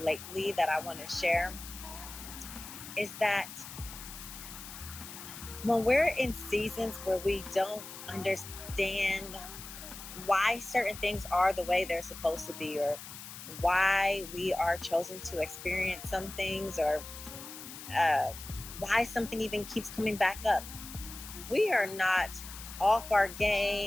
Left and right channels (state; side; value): noise; left; hiss, 12 dB below the sound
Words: that I want to share is that when we're in seasons where we don't understand why certain things are the way they're supposed to be, or why we are chosen to experience some things, or why something even keeps coming back up, we are not off our